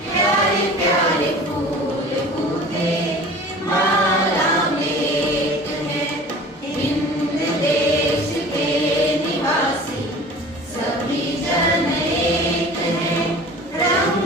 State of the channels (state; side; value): normal; both; correlation 0.42